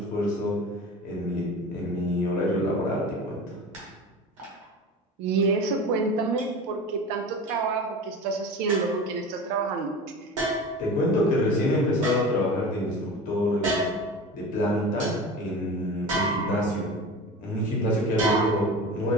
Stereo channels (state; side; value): normal; both; correlation 0.33